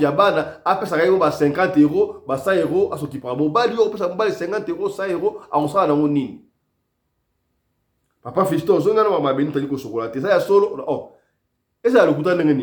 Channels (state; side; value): identical; both; correlation 1.00